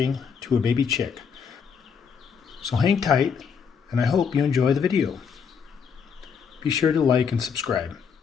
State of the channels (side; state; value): right; quieter; 6.5 dB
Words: to a baby chick. So hang tight, and I hope you enjoy the video. Be sure to like and subscribe.